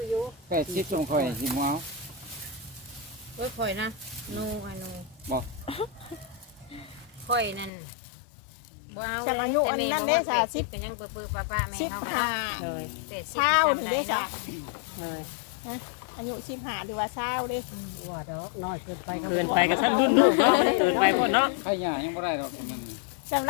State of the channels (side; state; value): right; drops out; at 7.7 s